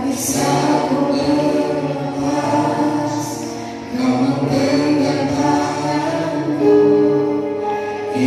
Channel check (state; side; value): identical; both; correlation 1.00